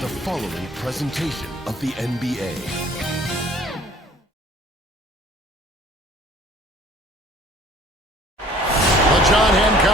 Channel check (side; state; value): both; normal; correlation 0.53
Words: following presentation of the NBA. The John